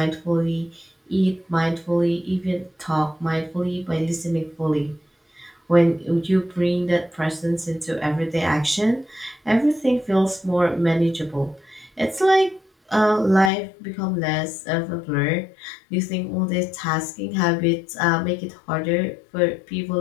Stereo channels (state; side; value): drops out; right; at 13.5 s